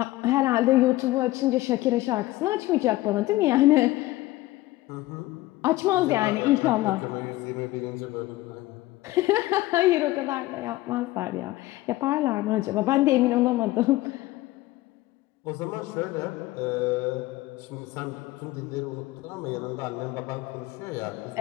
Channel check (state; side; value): quieter; right; 17.8 dB